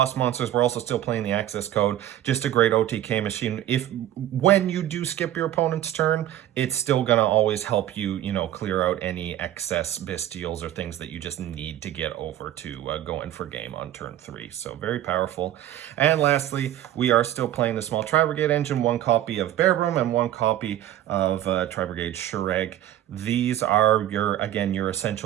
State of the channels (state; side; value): quieter; left; 12.4 dB